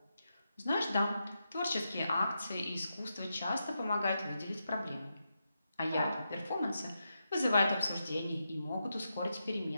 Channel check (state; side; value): inverted; both; correlation -0.86